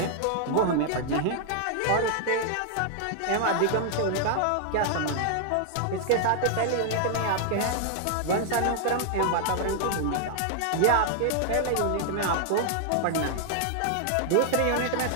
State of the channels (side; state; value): both; different; correlation -0.01